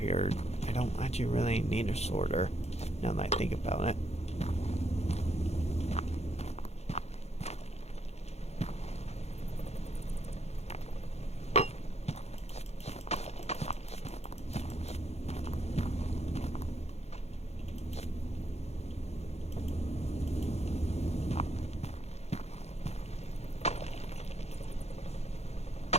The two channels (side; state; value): right; late; 0.31 ms